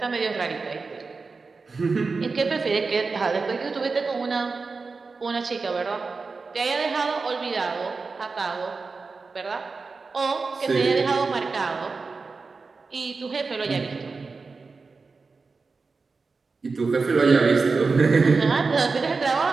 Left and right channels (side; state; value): left; quieter; 4.3 dB